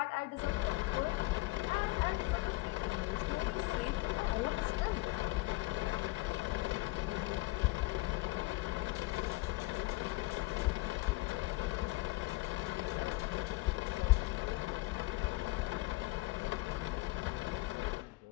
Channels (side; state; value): right; quieter; 21.2 dB